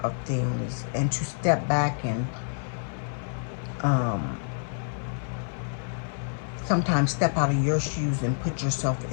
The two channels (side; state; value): right; silent; 59 dB below the other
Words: of things, and to step back and sometimes step out of your shoes and put yourself